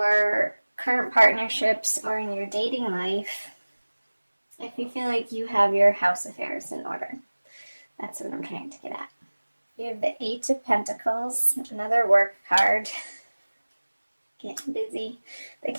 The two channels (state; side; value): inverted; both; correlation -1.00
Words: current partnerships or in your dating life if you feel like you have your house affairs in order. That's what I'm trying to get at. You have the Eight of Pentacles, another work card. Getting busy. The